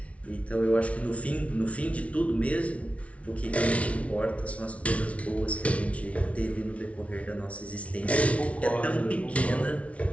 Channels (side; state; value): right; late; 0.064 ms